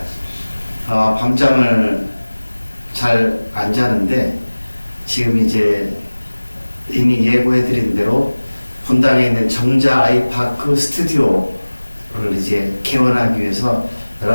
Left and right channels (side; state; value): both; inverted; correlation -1.00